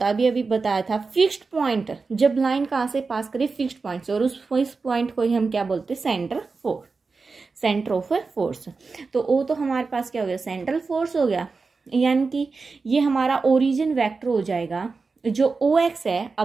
है, अभी अभी बताया था, फिक्स्ड पॉइंट। जब लाइन कहाँ से पास करे, फिक्स्ड पॉइंट से, और उस पॉइंट को ही हम क्या बोलते हैं, सेंटर ऑफ फोर्स। तो ओ तो हमारे पास क्या हो गया, सेंट्रल फोर्स हो गया, यानी कि ये हमारा ओरिजिन वेक्टर हो जाएगा। जो ओ एक्स है,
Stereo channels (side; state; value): left; quieter; 4.3 dB